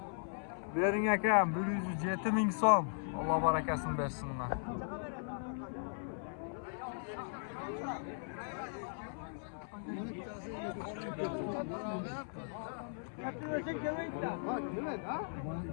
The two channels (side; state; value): right; silent; 52 dB below the other